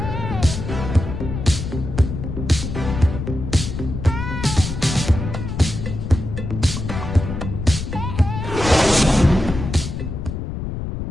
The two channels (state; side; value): noise; left; rumble, 5 dB below the sound